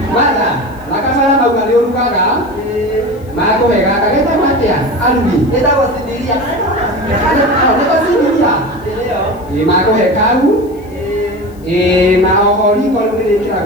Mana? Laka sana kau kali orang kakak. Mak aku heka kakak kita mati ya. Albi. Kita was sendiri ya. Kita sendiri ya. Mak aku heka aku. Mak orang kalau ni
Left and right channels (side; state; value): left; noise; hiss, 29 dB below the sound